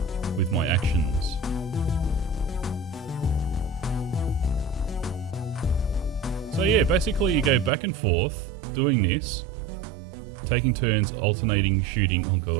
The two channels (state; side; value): drops out; left; at 7.7 s